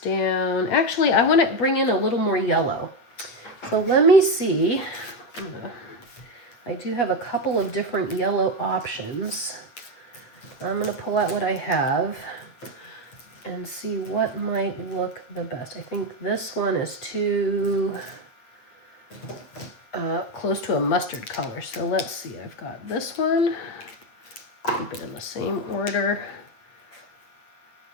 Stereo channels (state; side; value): late; right; 8.3 ms